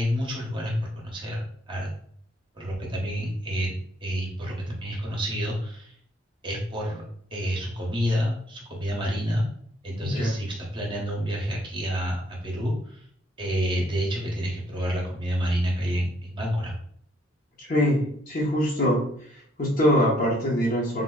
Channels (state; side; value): normal; both; correlation 0.68